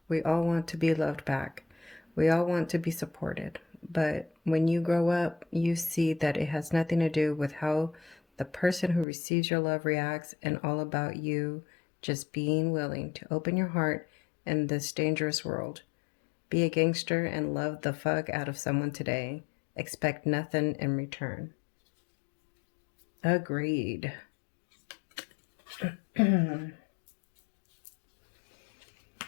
We all want to be loved back. We all want to be supported. But when you grow up, you see that it has nothing to do with how the person who receives your love reacts and all about you just being willing to open your heart in this dangerous world. Be a gangster and love the fuck out of someone today. Expect nothing in return. Agreed.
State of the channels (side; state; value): right; drops out; at 9.1 s